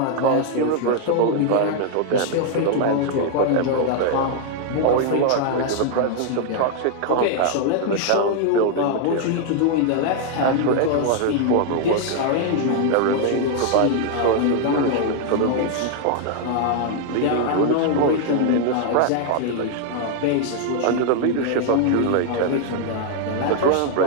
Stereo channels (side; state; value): both; different; correlation 0.00